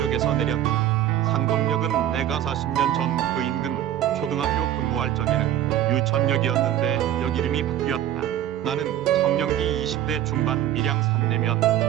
내렸다. 상동역은 내가 40년 전 그 인근 초등학교 근무할 적에는 유천역이었는데 역 이름이 바뀌었다. 나는 청년기 20대 중반 밀양 산내면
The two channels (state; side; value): quieter; left; 11.7 dB